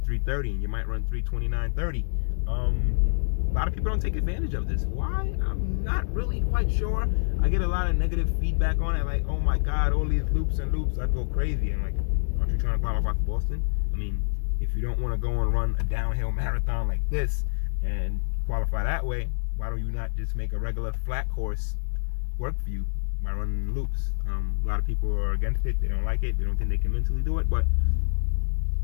and you might run 3:29.30. A lot of people don't take advantage of this. Why? I'm not really quite sure. I get a lot of negative feedback on it, like, oh my God, all these loops and loops, I go crazy. I'm like, aren't you trying to qualify for Boston? I mean, if you don't want to go and run a downhill marathon like this and qualify that way, why don't you not just make a regular flat course work for you by running loops? A lot of people are against it. They don't like it. They don't think they can mentally do it, but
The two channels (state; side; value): silent; right; digital silence